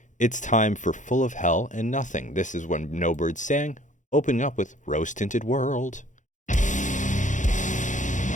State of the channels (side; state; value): right; late; 0.36 ms